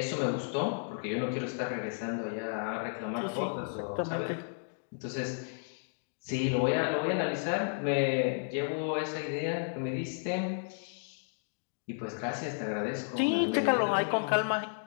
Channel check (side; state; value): right; silent; digital silence